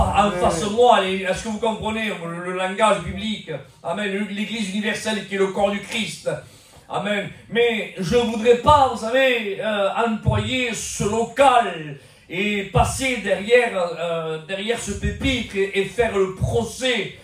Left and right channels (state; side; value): identical; both; correlation 1.00